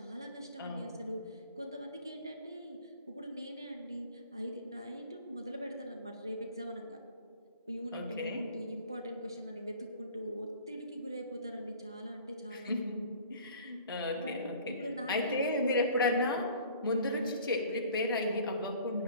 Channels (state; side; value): inverted; both; correlation -0.48